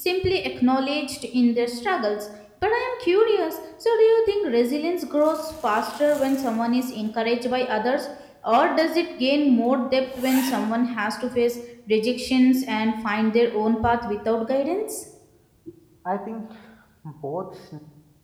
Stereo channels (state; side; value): identical; both; correlation 1.00